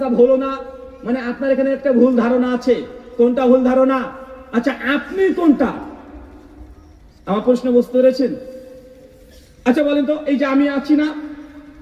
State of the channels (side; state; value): both; identical; correlation 1.00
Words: হলো না। মানে আপনার এখানে একটা ভুল ধারণা আছে। কোনটা ভুল ধারণা? আচ্ছা আপনি কোনটা? আমার প্রশ্ন বুঝতে পেরেছেন? আচ্ছা বলেন তো, এই যে আমি আছি না,